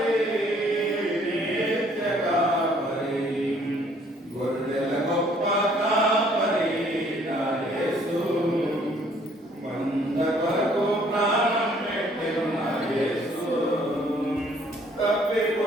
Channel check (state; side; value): normal; both; correlation 0.61